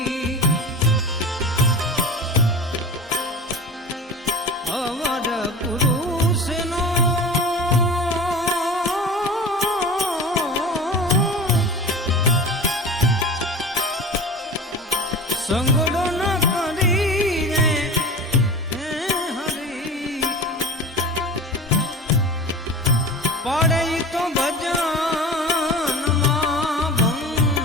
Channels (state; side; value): normal; both; correlation 0.33